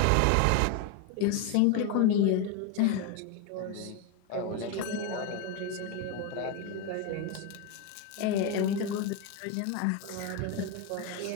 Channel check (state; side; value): different; both; correlation 0.02